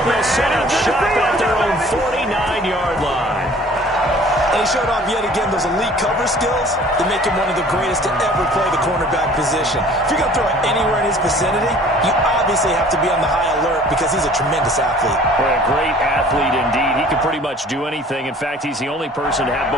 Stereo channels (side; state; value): both; normal; correlation 0.50